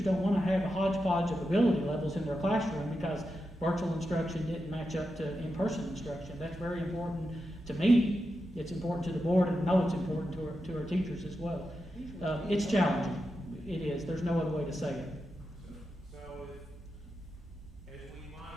don't want to have a hodgepodge of ability levels in their classroom because virtual instruction didn't match up to in-person instruction. That's very important to me. It's important to the board, and I know it's important to our teachers as well. It's challenging. It is. There's no other way to say it. So as we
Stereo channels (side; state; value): both; normal; correlation 0.88